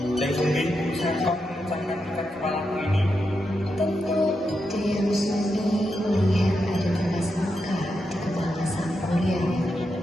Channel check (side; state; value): both; normal; correlation 0.85